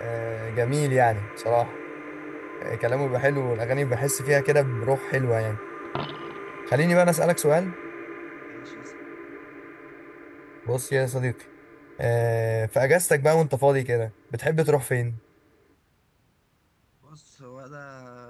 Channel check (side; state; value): both; identical; correlation 1.00